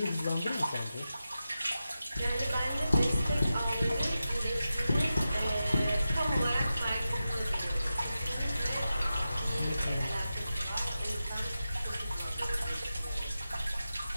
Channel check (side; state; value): both; inverted; correlation -0.92